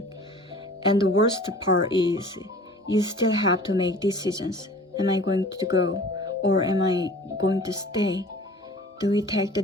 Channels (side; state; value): both; normal; correlation 0.45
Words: And the worst part is you still have to make decisions. Am I going to go or am I going to stay? Do we take the